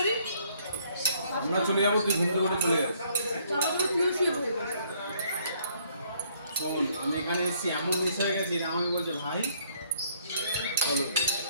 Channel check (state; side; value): inverted; both; correlation -0.65